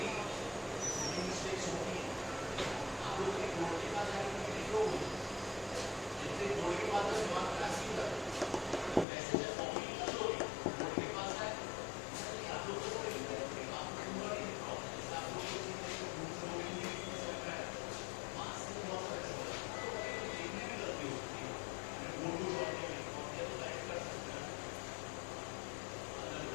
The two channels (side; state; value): right; drops out; at 9.1 s